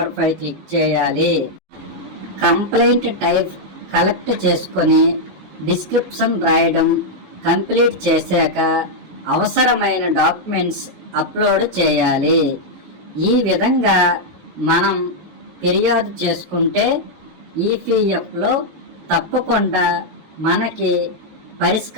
క్లిక్ చేయాలి. కంప్లైంట్ టైప్ కలెక్ట్ చేసుకొని డిస్క్రిప్షన్ రాయడం కంప్లీట్ చేశాక అవసరమైన డాక్యుమెంట్స్ అప్లోడ్ చేయాలి. ఈ విధంగా మనం ఫిర్యాదు చేసుకుంటే ఈపీఎఫ్లో తప్పకుండా మనకి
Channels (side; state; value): left; late; 18 ms